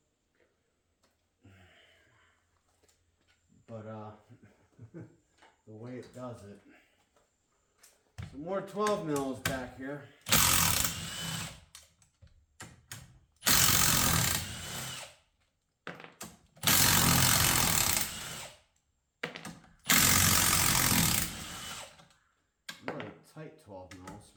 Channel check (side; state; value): both; identical; correlation 1.00